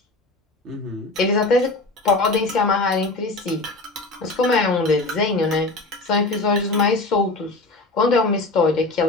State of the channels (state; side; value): quieter; right; 3.1 dB